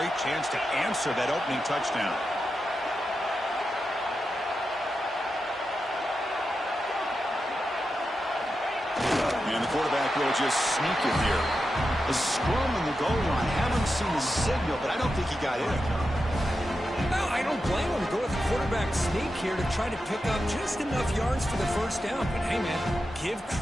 chance to answer that opening touchdown. And the quarterback will just sneak it here. A scrum on the goal line. Haven't seen the signal, but I don't think he got in. No, I don't blame him to go with the quarterback sneak here to try to pick up just enough yards for the first down. But hey, man, give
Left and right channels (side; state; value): both; normal; correlation 0.89